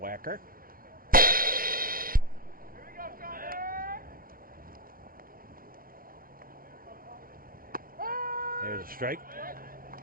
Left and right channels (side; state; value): left; late; 0.42 ms